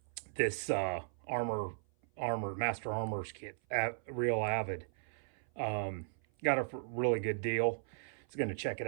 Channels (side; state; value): left; silent; 53 dB below the other